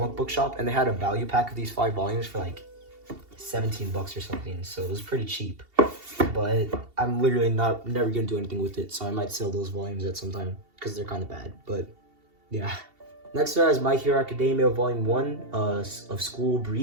book shop, and they had a value pack of these 5 volumes for like $17 or something, so it was pretty cheap. But I'm literally never gonna do anything with it, so I might sell those volumes at some time because they're kind of bad. But yeah. Next is My Hero Academia Volume 1 of School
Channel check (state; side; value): late; left; 2.7 ms